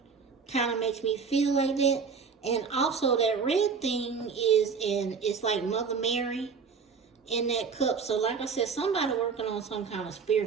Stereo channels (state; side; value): quieter; left; 5.5 dB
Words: kind of makes me feel like that. And also that red thing it's like Mother Mary in that cup. So like I said, somebody working on some kind of